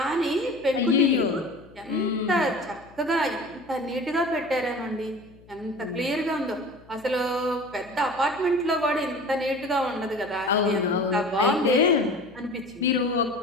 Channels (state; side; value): noise; left; hum, 25 dB below the sound